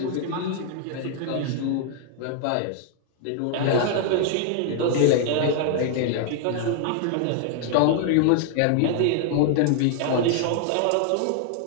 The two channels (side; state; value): both; different; correlation 0.00